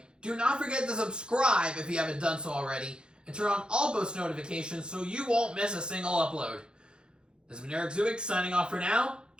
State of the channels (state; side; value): late; left; 0.050 ms